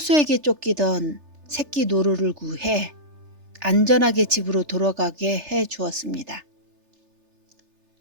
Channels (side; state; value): left; late; 3.4 ms